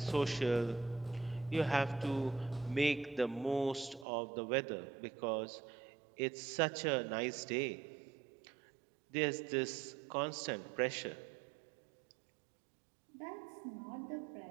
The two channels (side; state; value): left; drops out; at 4.0 s